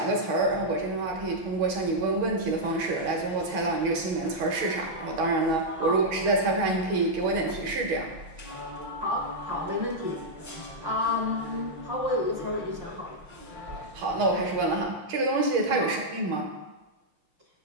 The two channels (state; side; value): late; left; 6.4 ms